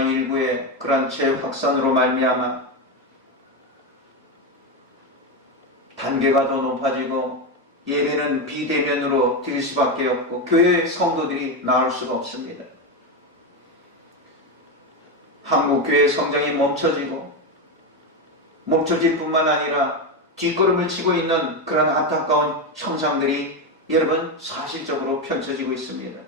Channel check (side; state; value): both; normal; correlation 0.12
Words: 그런 재확산으로 말미암아 단계가 더 높아지고 예배는 비대면으로 드릴 수밖에 없고 교회 성도들이 나올 수가 없습니다. 한국 교회 성장이 멈춰질 뿐만 아니라 뒷걸음을 치고 있는 그런 안타까운 형상들이 여러분 사실적으로 펼쳐지고 있습니다.